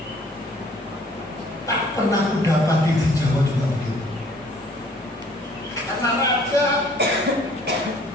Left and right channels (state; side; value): normal; both; correlation 0.57